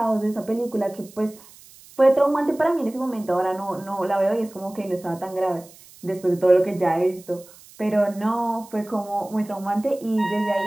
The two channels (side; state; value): right; noise; hiss, 23 dB below the sound